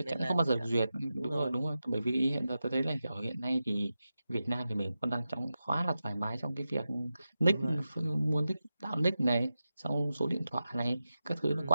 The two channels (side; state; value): both; inverted; correlation -0.92